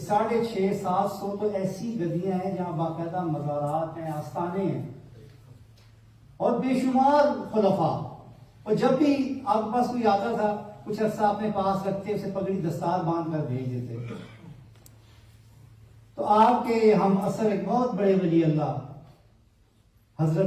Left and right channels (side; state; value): both; identical; correlation 1.00